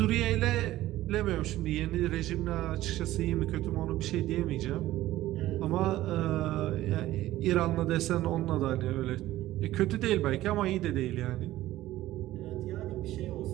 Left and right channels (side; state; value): left; quieter; 15.4 dB